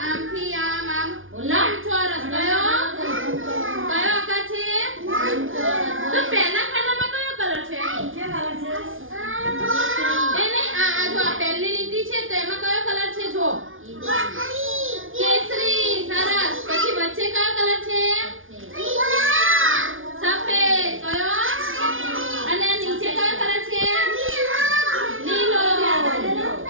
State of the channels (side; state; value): left; late; 0.58 ms